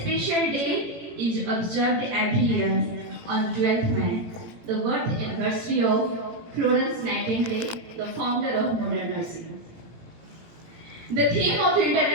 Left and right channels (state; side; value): late; left; 18 ms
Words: special day is observed every year on 12th May, the birth anniversary of Florence Nightingale, the founder of modern nursing. The theme of